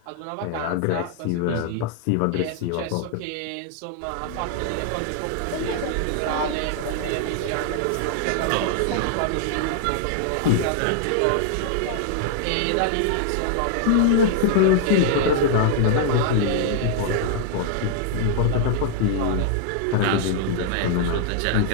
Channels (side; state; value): both; different; correlation -0.01